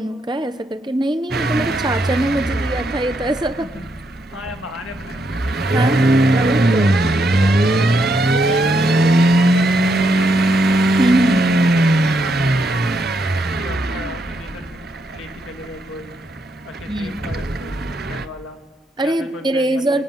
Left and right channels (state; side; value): normal; both; correlation 0.78